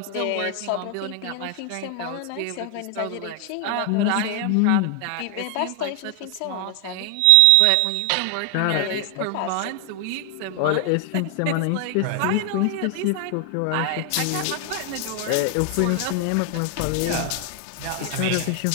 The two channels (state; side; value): different; both; correlation 0.00